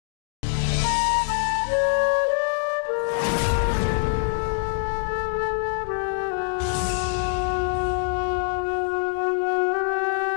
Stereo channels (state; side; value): silent; right; digital silence